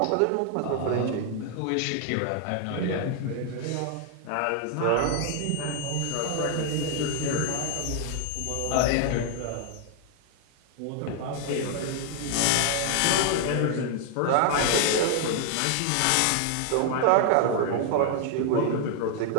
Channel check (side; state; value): both; different; correlation 0.00